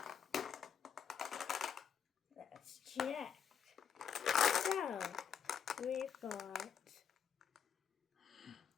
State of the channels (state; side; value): quieter; right; 7.9 dB